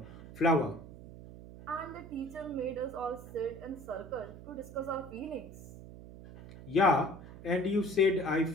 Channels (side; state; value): right; noise; hum, 15 dB below the sound